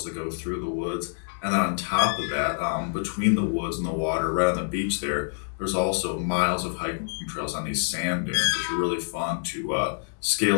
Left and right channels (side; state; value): right; silent; digital silence